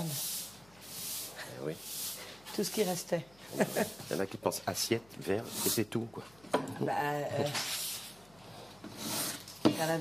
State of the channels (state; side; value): noise; left; hum, 26 dB below the sound